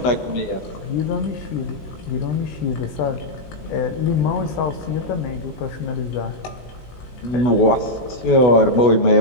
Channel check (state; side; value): late; right; 16 ms